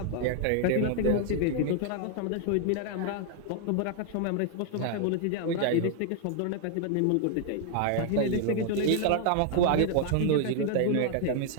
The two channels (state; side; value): different; both; correlation 0.00